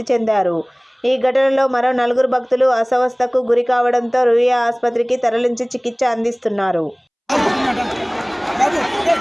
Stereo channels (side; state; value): both; identical; correlation 1.00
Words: చెందారు. ఈ ఘటనలో మరో 4 భక్తులు అస్వస్థతకు గురి కావడంతో రుయా ఆసుపత్రికి తరలించి చికిత్స అందిస్తున్నారు.